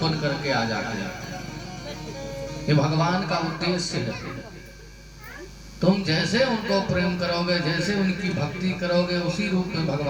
बन करके आ जाते हैं। ये भगवान का उद्देश्य है। तुम जैसे उनको प्रेम करोगे, जैसे उनकी भक्ति करोगे, उसी रूप में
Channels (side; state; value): both; identical; correlation 1.00